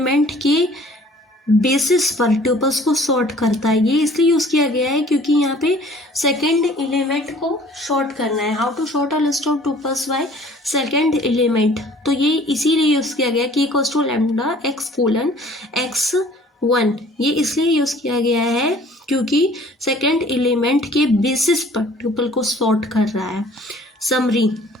के बेसिस पर ट्यूपल्स को सॉर्ट करता है। ये इसलिए यूज किया गया है क्योंकि यहाँ पे सेकंड एलिमेंट को शॉर्ट करना है। How to sort a list of tuples by second element, तो ये इसीलिए यूज किया गया कि इक्वल्स टू लैम्डा x:x1। ये इसलिए यूज किया गया है क्योंकि सेकंड एलिमेंट के बेसिस पर ट्यूपल को सॉर्ट कर रहा है। समरी,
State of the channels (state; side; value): normal; both; correlation 0.53